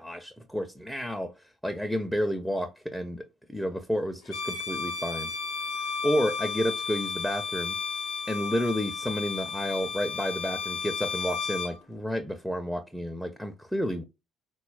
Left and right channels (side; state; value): both; normal; correlation 0.83